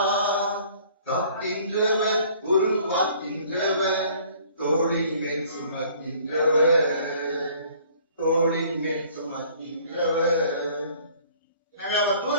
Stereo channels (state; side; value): inverted; both; correlation -0.55